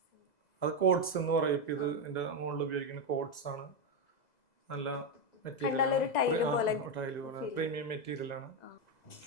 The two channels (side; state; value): right; late; 2.0 ms